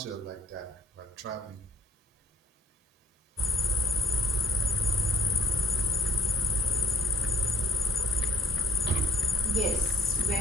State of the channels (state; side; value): normal; both; correlation 0.57